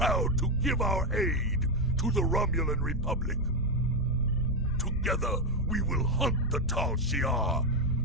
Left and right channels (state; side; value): normal; both; correlation 0.05